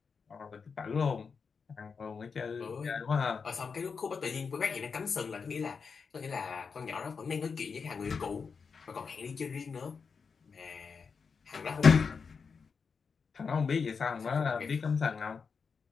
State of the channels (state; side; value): quieter; right; 5.5 dB